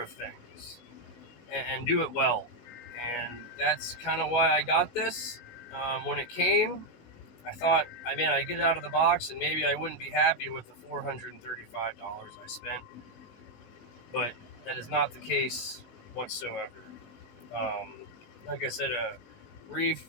things and do it well. And that's kind of why I got this. When it came, I thought, I'd get it out of the box and maybe I wouldn't be happy with the $435 I spent. But that is not the case whatsoever. Like I said, Reiff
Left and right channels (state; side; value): late; right; 19 ms